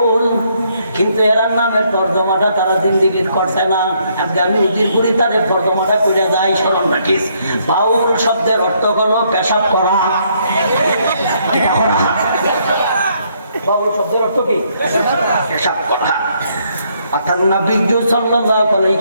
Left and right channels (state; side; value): inverted; both; correlation -0.71